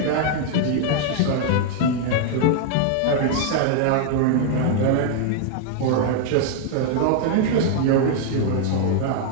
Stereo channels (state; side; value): different; both; correlation 0.00